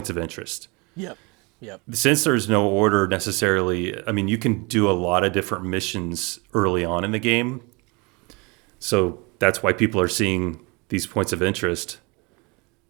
of interest. Yep. Yep. Since there's no order necessarily, I mean, you can do a lot of different missions early on in the game. So that's why people are seeing these points of interest.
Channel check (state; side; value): quieter; left; 28.4 dB